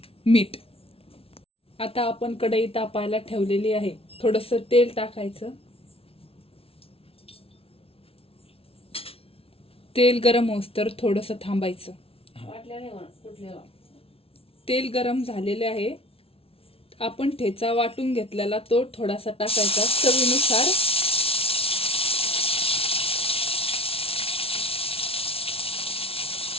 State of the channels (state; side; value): late; right; 0.27 ms